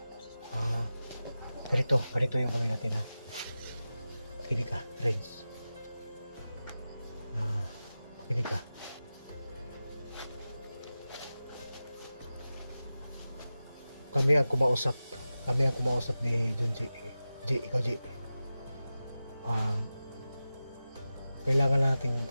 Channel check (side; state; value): both; inverted; correlation -0.94